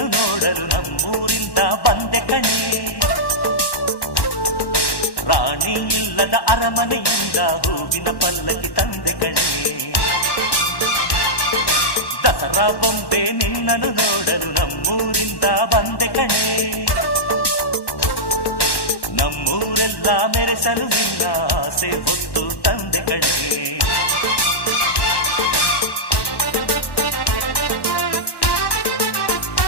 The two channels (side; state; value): right; late; 1.1 ms